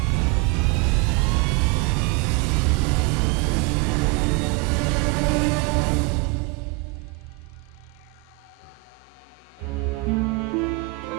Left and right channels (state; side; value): quieter; left; 27.1 dB